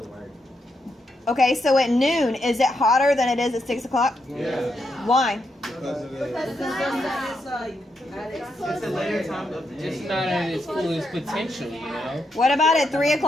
the word. Okay, so at noon, is it hotter than it is at 6 o'clock? Yeah. Why? Because of the. It's It's a later time of the Just day. not at its fullest potential, you know? What about at 3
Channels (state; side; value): normal; both; correlation 0.81